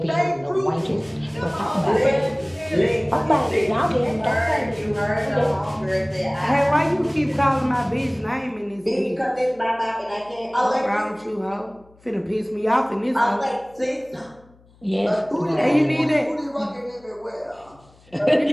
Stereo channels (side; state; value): left; noise; hum, 29 dB below the sound